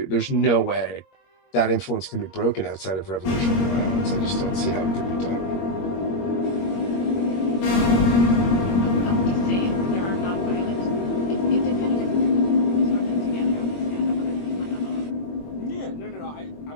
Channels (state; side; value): late; right; 21 ms